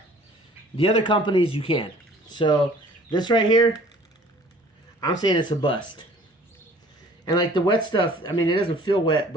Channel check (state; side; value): normal; both; correlation 0.52